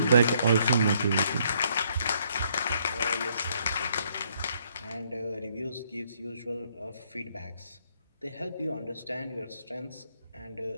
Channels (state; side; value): inverted; both; correlation -0.69